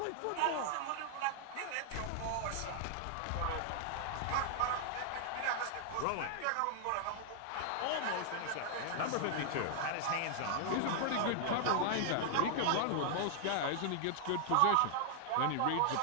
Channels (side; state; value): both; different; correlation 0.00